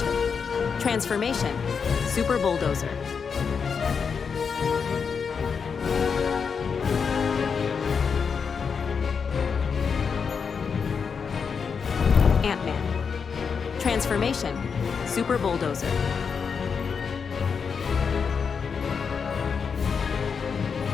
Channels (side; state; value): right; quieter; 6.0 dB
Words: transformation, Super Bulldozer. Ant-Man, transformation, Super Bulldozer.